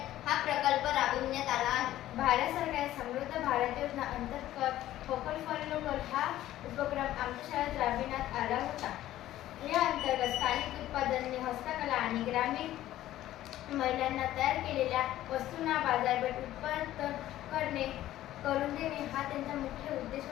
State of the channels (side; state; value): right; quieter; 13.9 dB